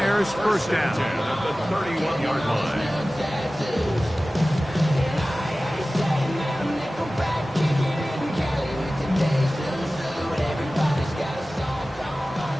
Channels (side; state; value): both; normal; correlation 0.96